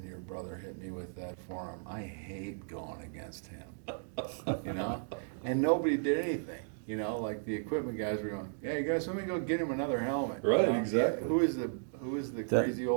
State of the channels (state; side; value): silent; left; digital silence